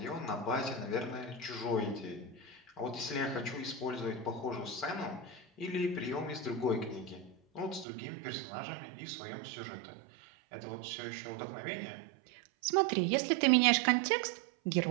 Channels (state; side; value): drops out; left; at 7.9 s